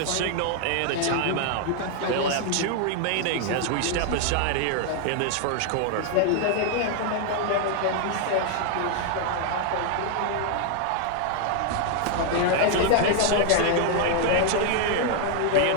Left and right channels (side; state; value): both; different; correlation 0.00